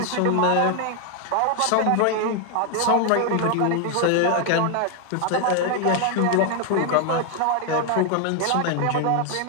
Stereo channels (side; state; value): both; different; correlation 0.01